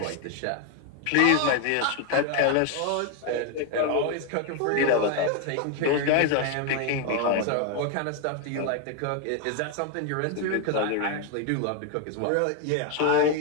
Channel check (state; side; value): different; both; correlation 0.01